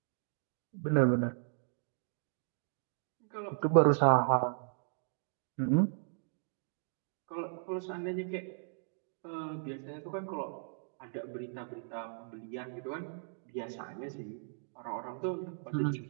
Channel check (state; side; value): silent; left; digital silence